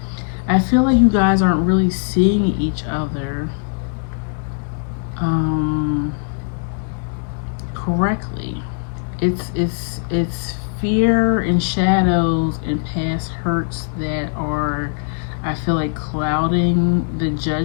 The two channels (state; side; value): silent; right; 60 dB below the other